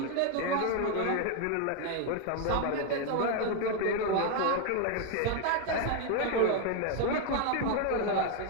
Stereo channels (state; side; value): different; both; correlation 0.01